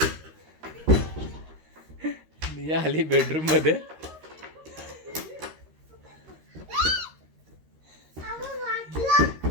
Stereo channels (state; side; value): late; left; 13 ms